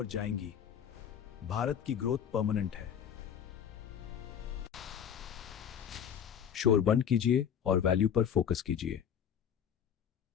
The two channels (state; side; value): quieter; right; 8.5 dB